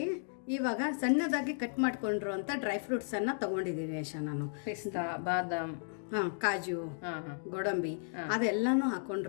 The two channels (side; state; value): right; silent; digital silence